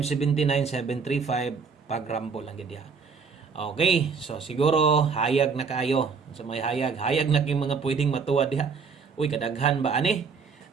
pag rumble lang gid. Okay, so siguro hayag na kaayo. Sa may hayag na kay mga pwedeng matuwa diha. Uy, kadaghan ba ani?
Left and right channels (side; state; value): left; quieter; 5.5 dB